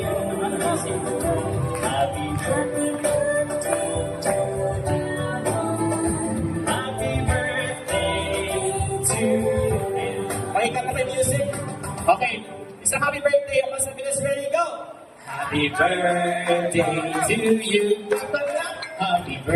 Okay, isang happy birthday. Ako sa Pinas, ready, go! Happy birthday to you. Happy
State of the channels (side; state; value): both; identical; correlation 1.00